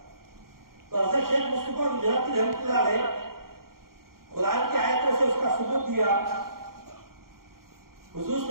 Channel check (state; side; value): late; left; 0.92 ms